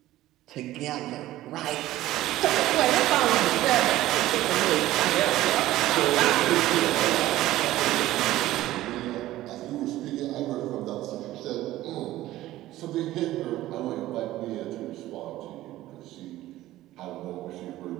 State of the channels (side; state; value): left; quieter; 15.5 dB